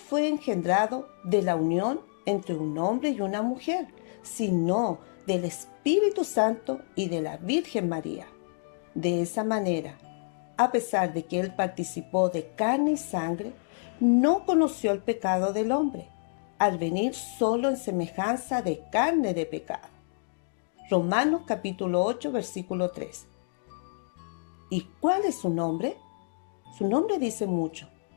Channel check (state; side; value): silent; right; digital silence